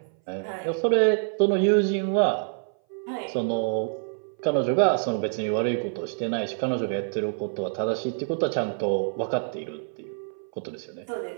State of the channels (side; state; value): left; silent; 58 dB below the other